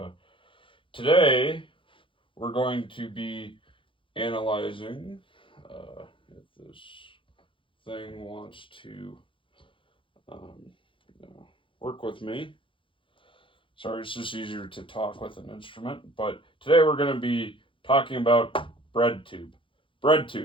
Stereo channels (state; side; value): late; right; 0.25 ms